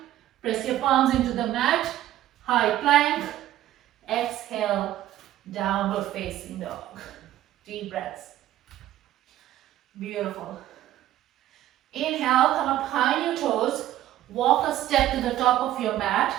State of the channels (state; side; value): quieter; left; 13.5 dB